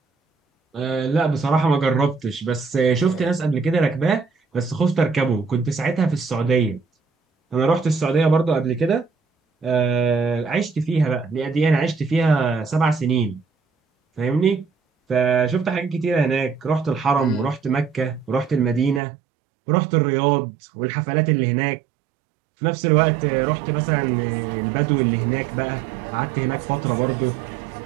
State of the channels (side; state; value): left; drops out; at 19.0 s